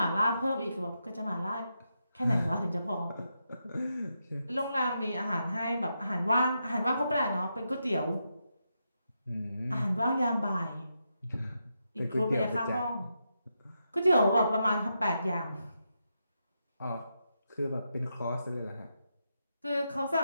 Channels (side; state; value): both; inverted; correlation -0.84